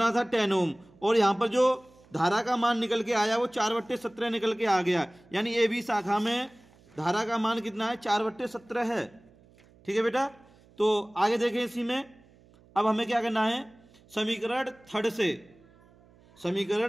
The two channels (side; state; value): right; noise; hum, 28 dB below the sound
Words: था, 10 ओम। और यहां पर जो धारा का मान निकल के आया वो 4/17 निकल के आ गया। यानी ए बी शाखा में धारा का मान कितना है, 4/17 है। ठीक है बेटा। तो आगे देखें इसी में। अब हमें क्या करना है, समीकरण थर्ड से,